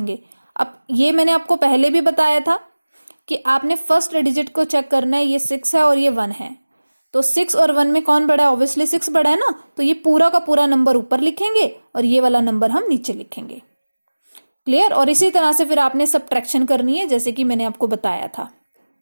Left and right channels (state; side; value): inverted; both; correlation -1.00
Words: अब ये मैंने आपको पहले भी बताया था कि आपने फर्स्ट डिजिट को चेक करना है, ये 6 है और ये 1 है, तो 6 और 1 में कौन बड़ा है? ऑब्वियसली 6 बड़ा है ना, तो ये पूरा का पूरा नंबर ऊपर लिखेंगे और ये वाला नंबर हम नीचे लिखेंगे। क्लियर? और इसी तरह से फिर आपने सब्ट्रैक्शन करनी है, जैसे कि मैंने आपको बताया था।